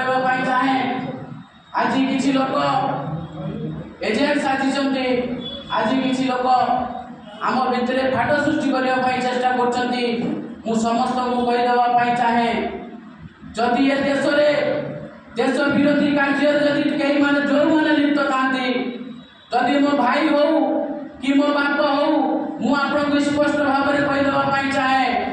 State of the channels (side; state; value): both; identical; correlation 1.00